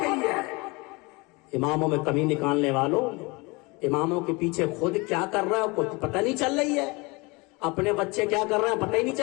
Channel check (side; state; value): right; quieter; 26.5 dB